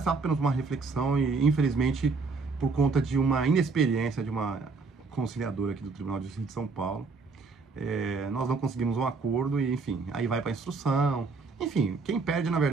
apenas uma reflexão e infelizmente por conta de uma inexperiência de uma conciliadora aqui do Tribunal de Justiça de São Paulo, nós não conseguimos um acordo e, enfim, aí vai para instrução. Enfim, quem perde, na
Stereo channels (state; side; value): quieter; left; 4.2 dB